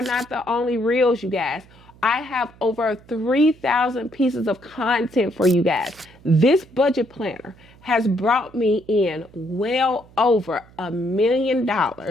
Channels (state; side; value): noise; right; hum, 25 dB below the sound